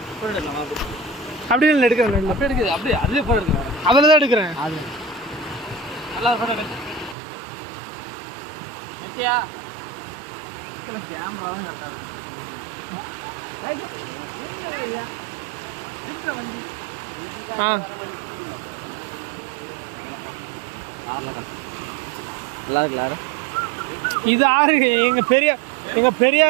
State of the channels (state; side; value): drops out; left; at 7.2 s